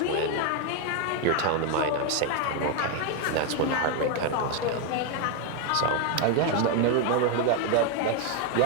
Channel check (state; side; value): different; both; correlation 0.01